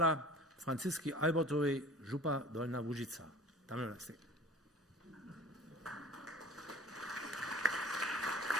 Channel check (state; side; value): normal; both; correlation 0.44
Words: Francisky Albertovej, župa Dolná Łužica. Tam je nás.